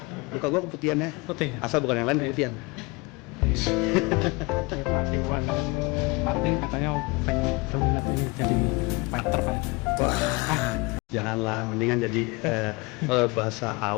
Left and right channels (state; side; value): quieter; right; 25.9 dB